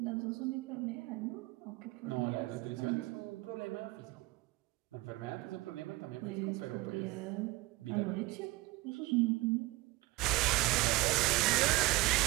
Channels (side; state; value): left; quieter; 21.0 dB